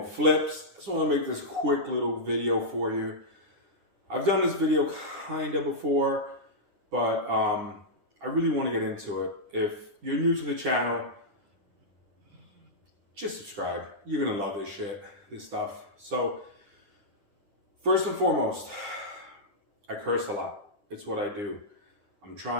Flips. I just want to make this quick little video for you. I've done this video kind of before, but I really want to get into it. If you're new to the channel, just subscribe. You're going to love this shit, this stuff. So, first and foremost, I curse a lot. It's what I do. I'm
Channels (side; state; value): left; late; 9.9 ms